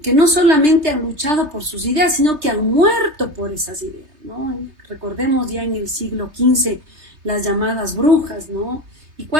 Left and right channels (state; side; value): late; left; 3.3 ms